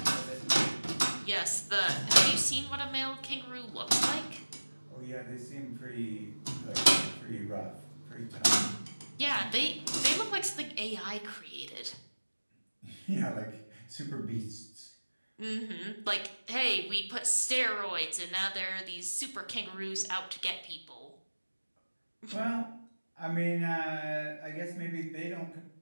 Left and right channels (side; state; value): both; inverted; correlation -1.00